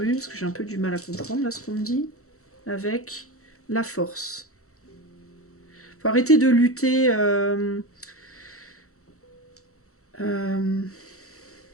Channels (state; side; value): late; right; 0.64 ms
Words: parce que j'ai un peu du mal à comprendre là ce qu'on me dit. Avec la force. Faut arrêter de lutter...